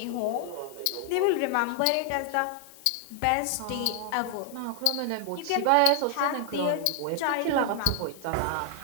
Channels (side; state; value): both; different; correlation 0.00